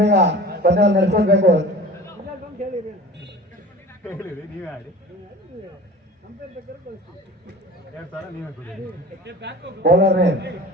ಪಂದ್ಯ ನಡೆಸ್ಕೊಡ್ಬೇಕು. ಬೌಲರ್ ನೇಮ್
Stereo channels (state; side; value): normal; both; correlation 0.39